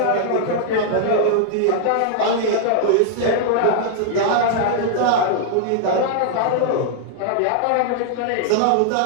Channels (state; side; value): different; both; correlation -0.01